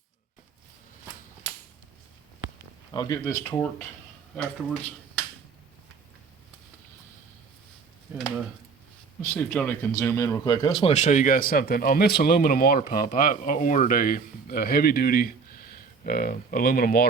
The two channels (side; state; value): left; quieter; 5.1 dB